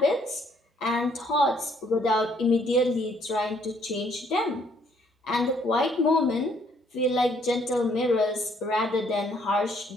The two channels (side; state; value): both; normal; correlation 0.66